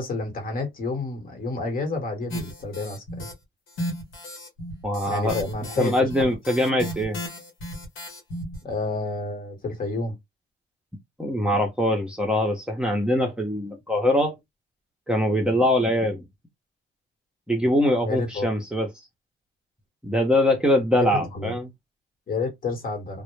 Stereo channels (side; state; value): both; normal; correlation 0.61